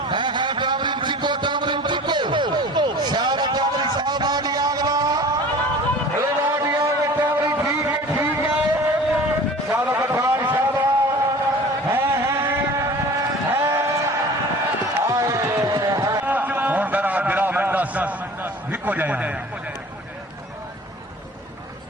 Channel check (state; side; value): normal; both; correlation 0.43